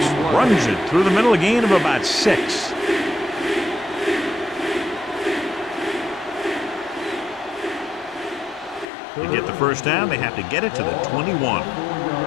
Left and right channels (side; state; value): right; drops out; at 8.8 s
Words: runs it through the middle, a gain of about 6. To get the first down, they have to get it to the 21.